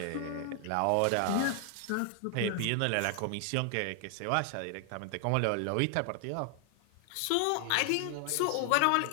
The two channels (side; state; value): both; different; correlation 0.00